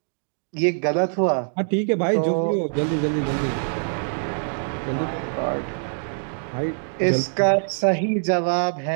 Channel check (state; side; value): silent; left; digital silence